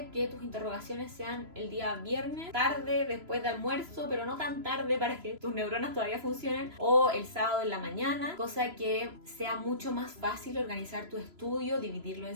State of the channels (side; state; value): left; late; 3.0 ms